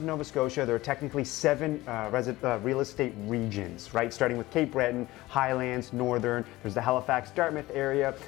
Nova Scotia, there are technically 7 real estate regions, right? Starting with Cape Breton, Highlands, Northern, there's the Halifax Dartmouth area,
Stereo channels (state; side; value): quieter; right; 18.5 dB